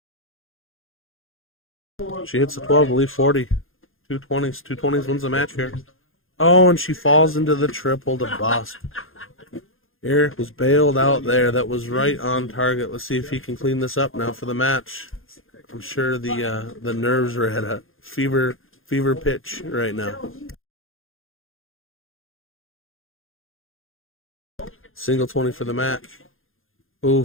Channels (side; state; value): right; late; 0.60 ms